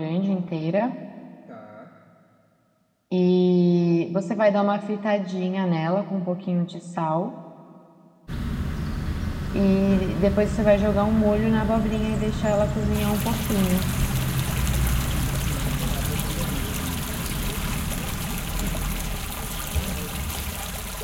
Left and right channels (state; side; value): identical; both; correlation 1.00